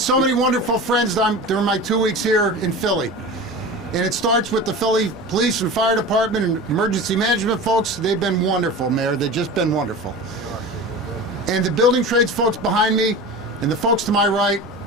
many wonderful friends during my 2 weeks here in Philly. And it starts with the Philly Police and Fire Department and Emergency Management folks. They've been wonderful, Mayor. They've just been wonderful. And the building trades folks behind me and the folks to my right,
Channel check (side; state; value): both; normal; correlation 0.33